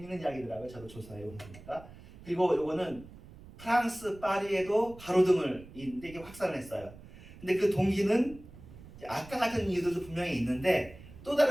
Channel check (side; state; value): right; noise; rumble, 18 dB below the sound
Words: 이야기더라고요. 저도 조사해 온 거니까. 그리고 요거는 프랑스 파리에도 가로등을 있는데 이게 확산을 했어요. 근데 그 동기는 아까 같은 이유들도 분명히 있는데 또